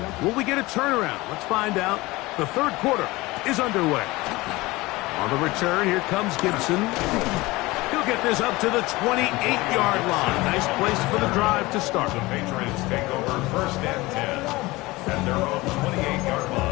Will we get a turnaround? Let's find out. The third quarter is underway. On the return, here comes Gibson. He'll get this up to the 28-yard line. Nice place for the drive to start. The Patriots take over first and 10 at their own 28-yard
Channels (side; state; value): right; quieter; 21.0 dB